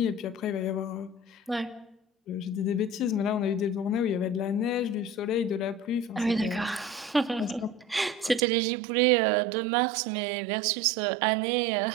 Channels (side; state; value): left; drops out; at 8.4 s